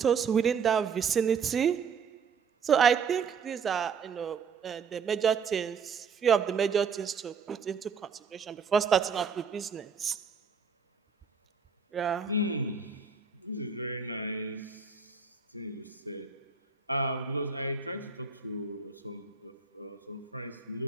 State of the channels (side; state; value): left; quieter; 5.9 dB